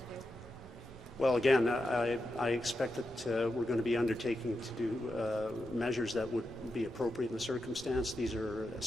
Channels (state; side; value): normal; both; correlation 0.87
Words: do? Well, again, I expect that we're going to be undertaking to do measures that would be appropriate in the circumstance. These are